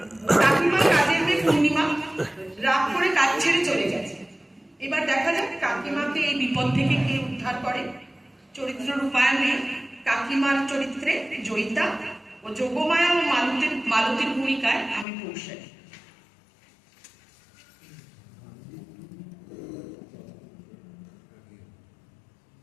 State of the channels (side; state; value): right; drops out; at 15.1 s